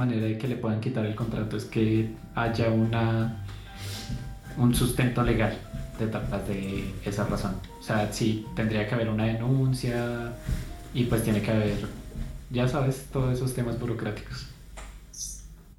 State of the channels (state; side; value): identical; both; correlation 1.00